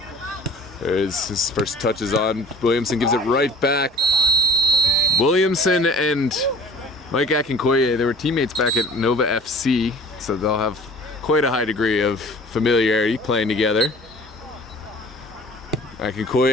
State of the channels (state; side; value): normal; both; correlation 0.47